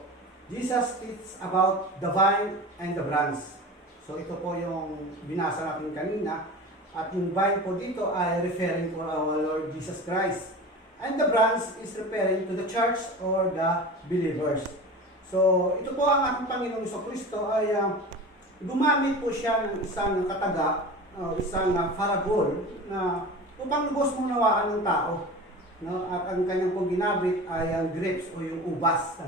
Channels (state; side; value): normal; both; correlation 0.33